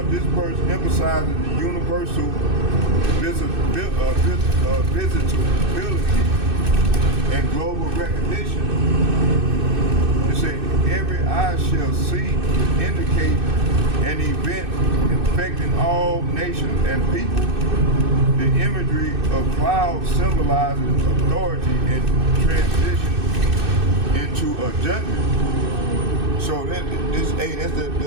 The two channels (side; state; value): left; late; 2.6 ms